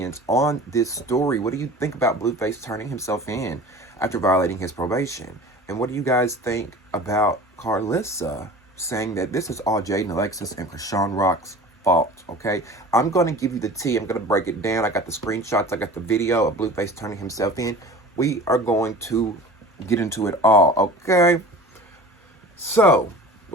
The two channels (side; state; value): both; normal; correlation 0.40